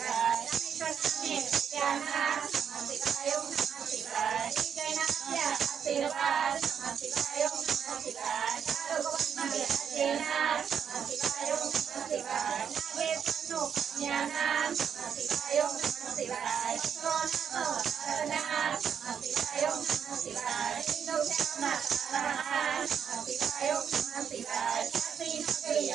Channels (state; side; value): quieter; left; 7.8 dB